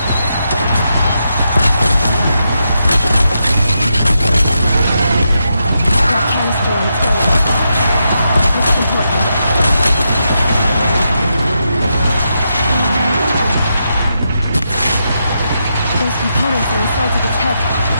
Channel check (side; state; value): both; inverted; correlation -0.84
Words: That canister on its way. This is important. Those components are inside of its head.